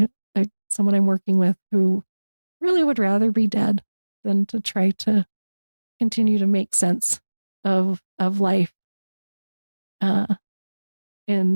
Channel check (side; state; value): both; inverted; correlation -1.00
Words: someone I'm working with who really would rather be dead than to try to continue to make sense of life